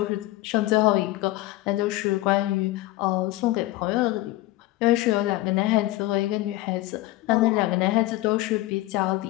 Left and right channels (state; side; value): quieter; right; 17.7 dB